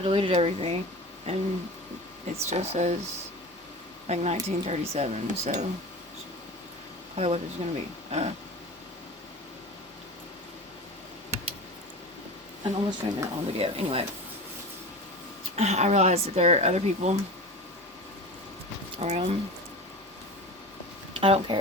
deleted everything, and it still says like 1937. So probably what it's gonna be. And almost 20 minute long video. Anyway, I realized that there are other people around. I don't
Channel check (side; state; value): both; normal; correlation 0.31